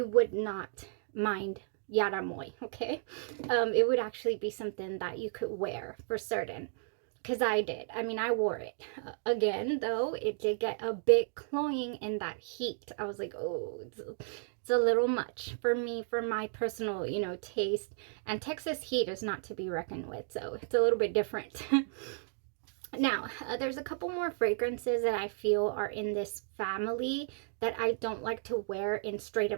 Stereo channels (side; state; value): left; silent; digital silence